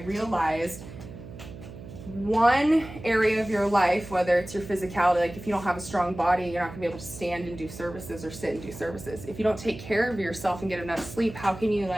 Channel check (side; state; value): right; noise; hum, 14 dB below the sound